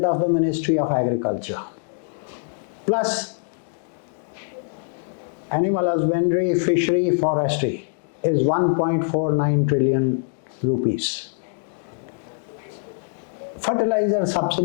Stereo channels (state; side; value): silent; right; digital silence